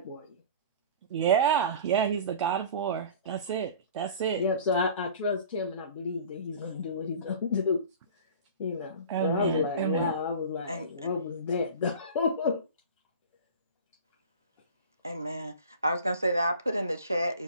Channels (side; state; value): both; inverted; correlation -0.39